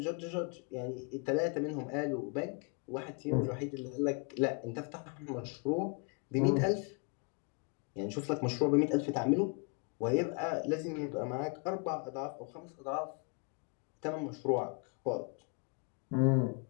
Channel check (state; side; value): quieter; right; 34.2 dB